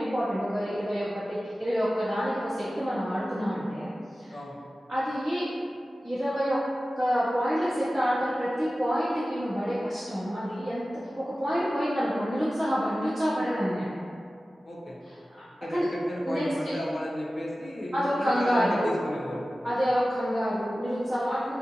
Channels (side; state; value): both; normal; correlation 0.95